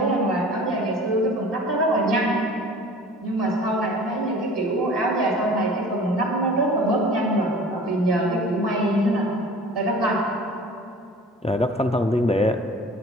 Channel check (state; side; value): normal; both; correlation 0.44